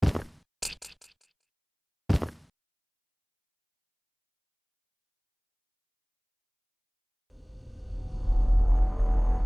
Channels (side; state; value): both; identical; correlation 1.00